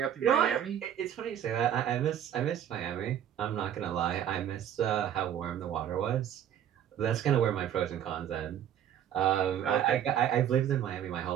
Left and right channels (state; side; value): quieter; left; 10.1 dB